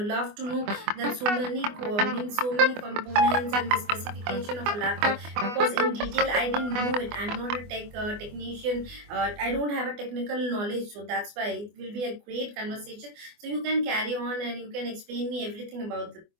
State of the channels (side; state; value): left; late; 24 ms